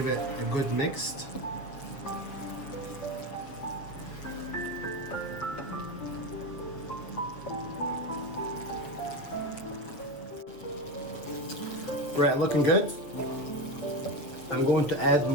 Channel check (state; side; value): late; right; 7.2 ms